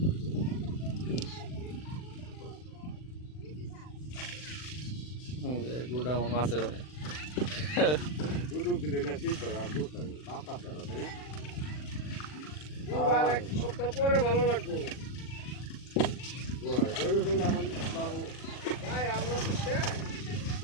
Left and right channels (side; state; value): right; late; 40 ms